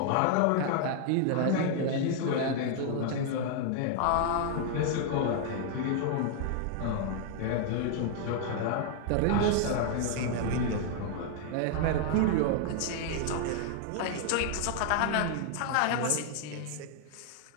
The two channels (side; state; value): both; different; correlation 0.00